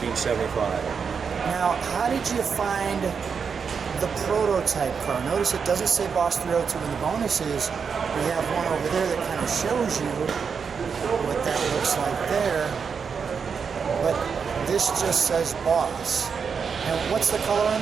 Now, how did you find the prototype car? Notice it doesn't say Boss 302 in the bonuses. We have one over there that kind of shows you what that looks like there. But this just says Boss. And what's the color on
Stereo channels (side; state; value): left; quieter; 6.1 dB